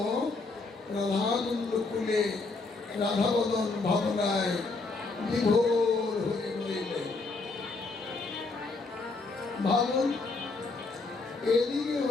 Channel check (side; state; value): right; quieter; 3.7 dB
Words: রাধাকুণ্ড কুলে রাধা বদন ভাবনায় বিভোর হয়ে রইলেন। ভাবুন, এদিকে